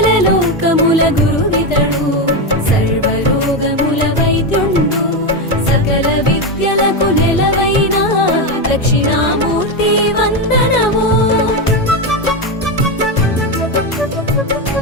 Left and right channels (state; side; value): normal; both; correlation 0.11